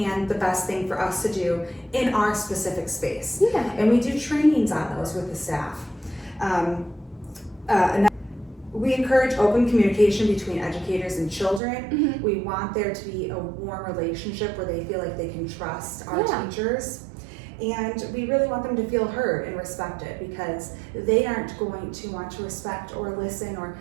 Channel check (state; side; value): drops out; left; at 11.6 s